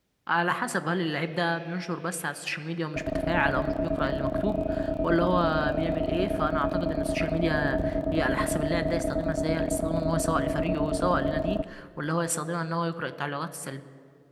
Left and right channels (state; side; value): identical; both; correlation 1.00